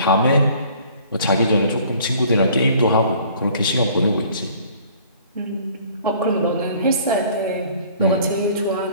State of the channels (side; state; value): both; inverted; correlation -0.53